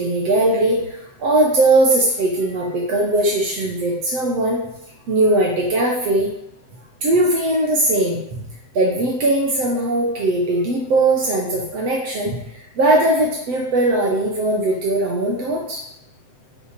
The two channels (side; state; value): left; late; 7.8 ms